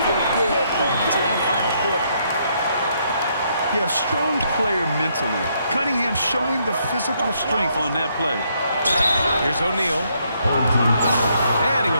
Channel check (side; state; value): both; inverted; correlation -0.73